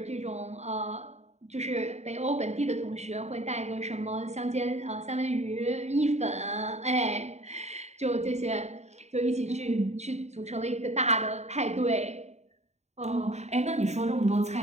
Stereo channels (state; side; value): late; left; 0.32 ms